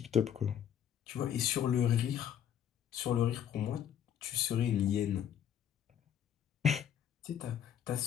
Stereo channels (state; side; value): quieter; right; 9.5 dB